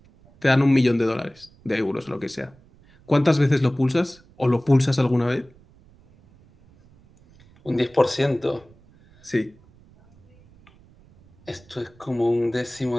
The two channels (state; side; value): noise; right; rumble, 28 dB below the sound